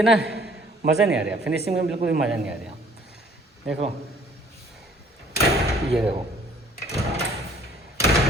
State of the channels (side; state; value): both; normal; correlation 0.57